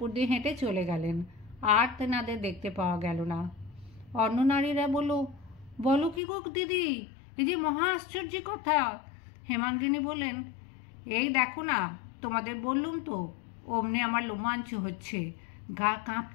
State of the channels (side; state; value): right; drops out; at 6.2 s